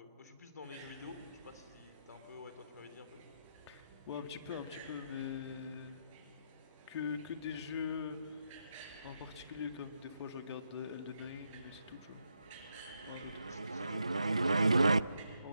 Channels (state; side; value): inverted; both; correlation -0.81